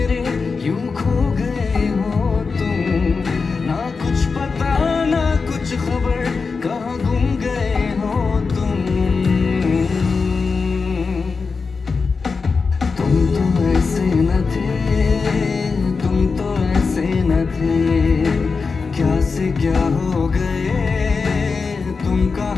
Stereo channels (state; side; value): quieter; right; 4.7 dB